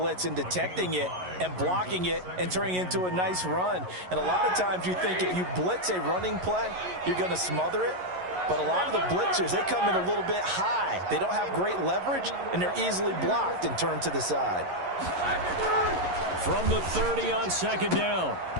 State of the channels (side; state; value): left; late; 11 ms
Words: and detecting it and blocking it and turning it into a nice run. And a lot of times you think if you blitz a running play, you're going to smother it. But a lot of the blitzers, they come in a little bit high. They don't have great leverage, and they're easily blocked and turned to the side. From the 30 on second down,